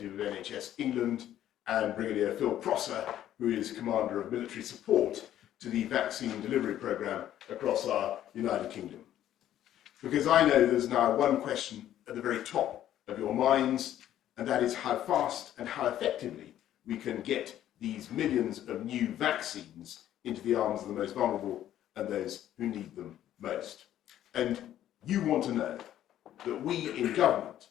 of NHS England, and Brigadier Phil Prosser, who is Commander of Military Support to the vaccine delivery programme across our United Kingdom. Because I know there's now one question at the very top of your minds, and that is how fast and how effectively we can get these millions of new vaccines into the arms of the most vulnerable and those who need them most. And you want to know that we in government,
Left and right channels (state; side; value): quieter; right; 11.9 dB